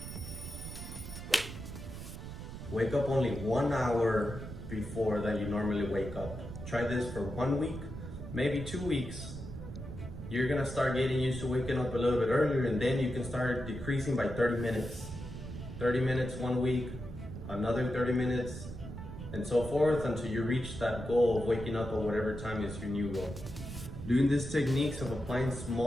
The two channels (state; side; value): noise; right; rumble, 10 dB below the sound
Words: wake up only 1 hour before that you normally wake up. Try this for 1 week, maybe 2 weeks. You're gonna start getting used to waking up a little bit earlier, and then you can start decreasing by 30 minutes. 30 minutes 1 week, another 30 minutes, and so forth until you reach that goal of waking up at whatever time is your new goal. Doing these techniques of applying